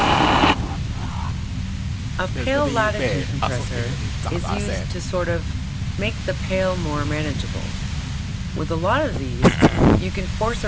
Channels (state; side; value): identical; both; correlation 1.00